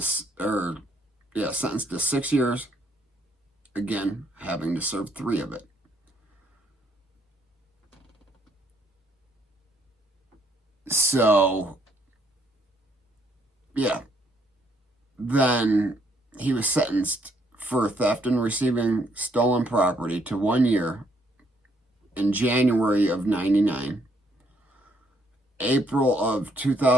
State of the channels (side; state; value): both; normal; correlation 0.70